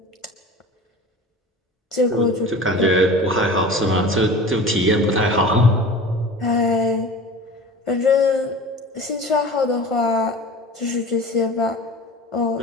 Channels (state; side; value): normal; both; correlation 0.37